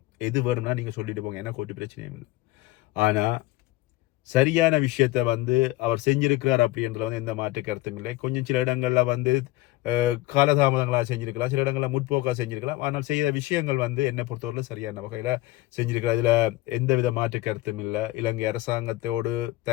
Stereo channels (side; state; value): right; quieter; 18.1 dB